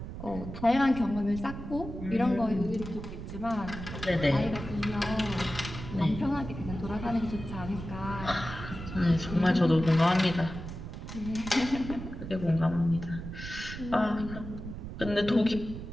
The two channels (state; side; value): noise; right; rumble, 9 dB below the sound